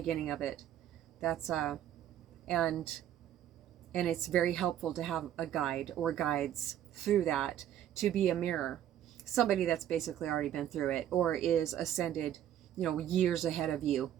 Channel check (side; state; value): left; quieter; 11.1 dB